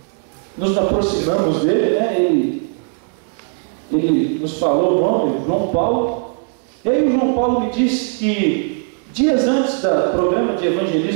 nos aproximamos dele, né? Ele nos falou o nome, João Paulo. E aí o João Paulo me disse que dias antes do programa de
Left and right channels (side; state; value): left; silent; 56 dB below the other